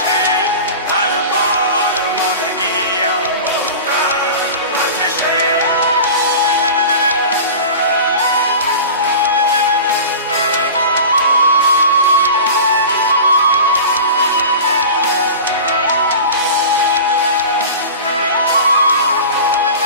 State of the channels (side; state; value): both; inverted; correlation -0.34